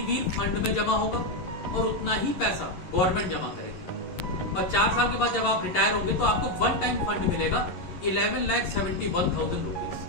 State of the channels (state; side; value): late; right; 11 ms